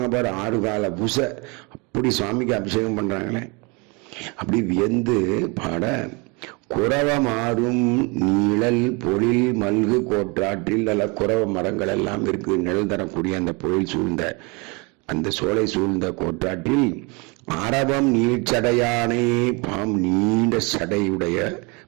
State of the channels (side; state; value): left; quieter; 29.6 dB